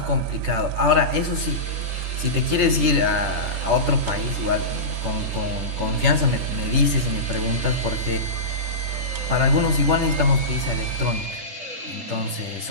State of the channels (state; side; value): late; left; 10 ms